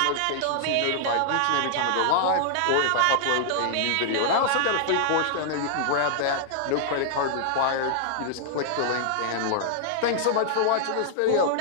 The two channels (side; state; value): both; different; correlation -0.01